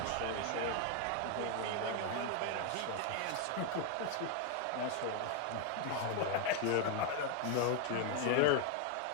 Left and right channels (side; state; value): both; different; correlation 0.01